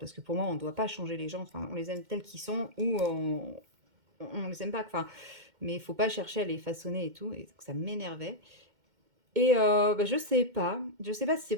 que pour moi, on ne doit pas changer les gens, enfin, on les aime tels qu'ils sont, ou on les aime pas, enfin, mais il faut pas chercher à les façonner et tout, et ça m'énervait. Et je sais pas si c'est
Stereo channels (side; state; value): left; late; 2.1 ms